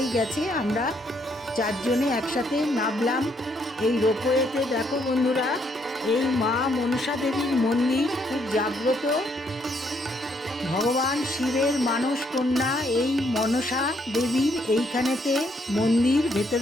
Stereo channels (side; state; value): both; normal; correlation 0.72